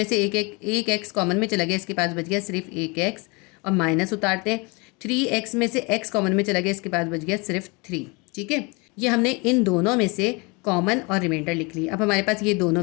से एक x कॉमन में चला गया, इसके पास बच गया सिर्फ एक x और माइनस उतारते हैं। 3x में से x कॉमन में चला गया, इसके पास बच गया सिर्फ 3। ठीक है, ये हमने इन दोनों में से कॉमन और रिमाइंडर लिख ली। अब हमारे पास ये दोनों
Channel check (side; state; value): right; quieter; 28.3 dB